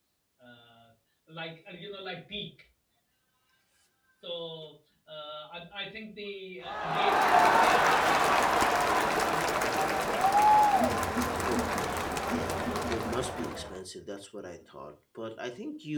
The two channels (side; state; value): both; identical; correlation 1.00